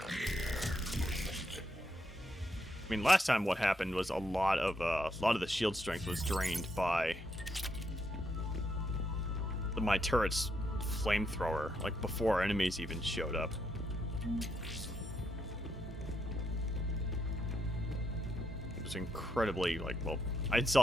I mean, last time what happened was a lot of the shield strength was drained by my turret's flamethrower, like before enemies even showed up. It was incredibly, like, well, I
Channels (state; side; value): normal; both; correlation 0.79